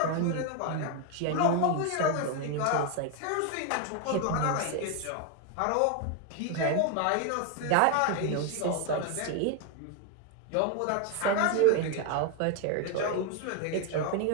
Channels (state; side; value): different; both; correlation 0.00